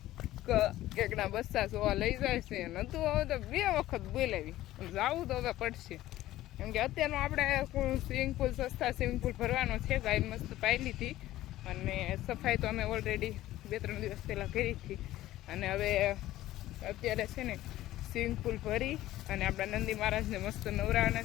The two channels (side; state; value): right; quieter; 15.1 dB